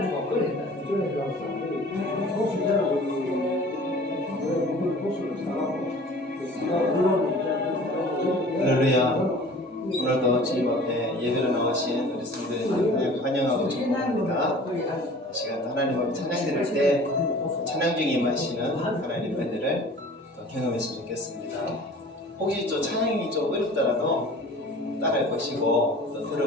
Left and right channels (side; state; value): both; normal; correlation 0.45